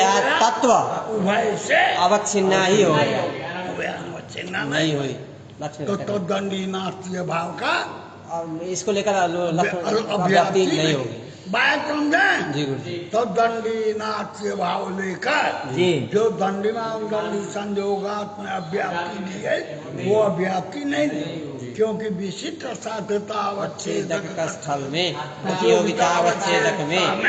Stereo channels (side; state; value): both; identical; correlation 1.00